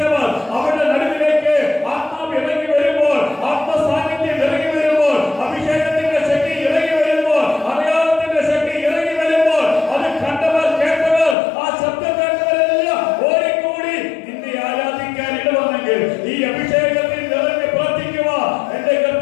അവരുടെ നടുവിലേക്ക് ആത്മാവ് ഇറങ്ങി വരുമ്പോൾ, ആത്മസാന്നിധ്യം ഇറങ്ങി വരുമ്പോൾ, അഭിഷേകത്തിന്റെ ശക്തി ഇറങ്ങി വരുമ്പോൾ, അടയാളത്തിന്റെ ശക്തി ഇറങ്ങി വരുമ്പോൾ, അത് കണ്ടവർ, കേട്ടവർ, ആ ശബ്ദം കേട്ടവരെല്ലാം ഓടിക്കൂടി നിന്നെ ആരാധിക്കാൻ ഇടവന്നെങ്കിൽ ഈ അഭിഷേകത്തിൽ നിറഞ്ഞ് പ്രാർത്ഥിക്കുക എന്റെ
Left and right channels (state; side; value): drops out; right; at 11.4 s